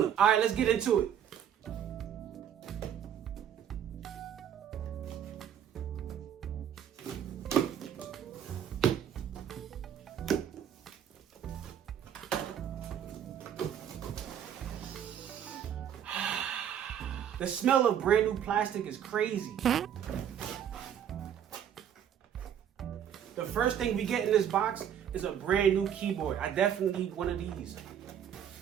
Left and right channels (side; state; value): left; quieter; 9.3 dB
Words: All right, let's get into it. The smell of brand new plastic is crazy. The first thing we get in this box is a brand new keyboard. I definitely need one of these.